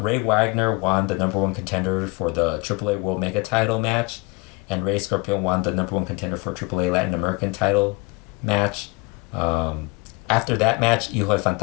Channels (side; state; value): right; quieter; 26.6 dB